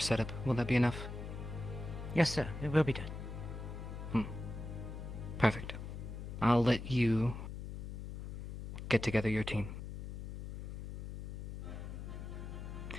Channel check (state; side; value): noise; left; hum, 7 dB below the sound